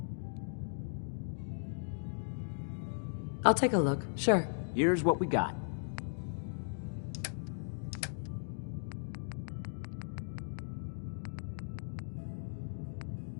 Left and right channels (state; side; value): silent; right; digital silence